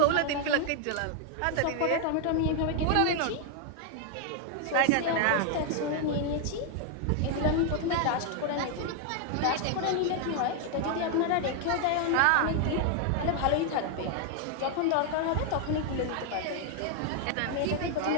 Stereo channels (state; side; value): different; both; correlation 0.00